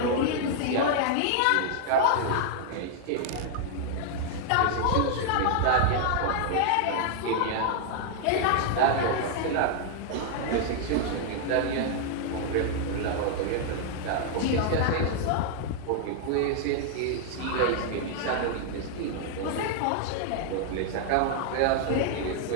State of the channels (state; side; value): different; both; correlation 0.00